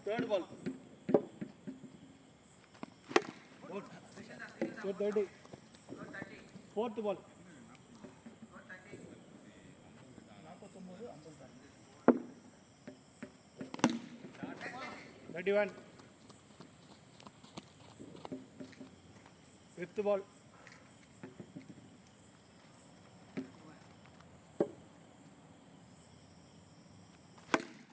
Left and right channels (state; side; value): identical; both; correlation 1.00